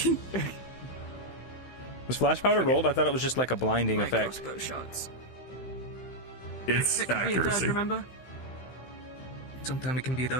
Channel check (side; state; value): right; late; 16 ms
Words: Was flash powder rolled? I thought it was just like a blinding effect. Crossbow shots. It's It could be a dud, accuracy. remember? Sometimes it can be a